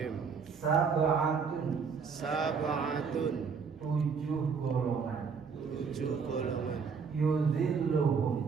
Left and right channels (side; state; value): left; quieter; 5.7 dB